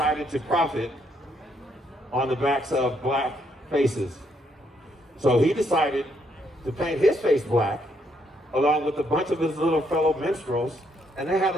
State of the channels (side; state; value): both; normal; correlation 0.73